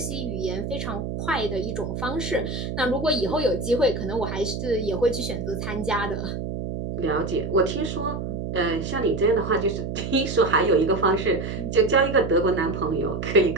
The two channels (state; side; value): noise; right; hum, 5 dB below the sound